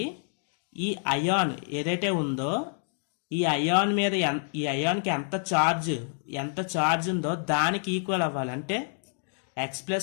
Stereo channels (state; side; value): silent; right; 59 dB below the other